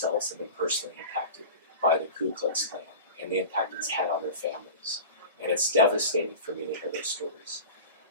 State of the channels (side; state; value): both; inverted; correlation -0.33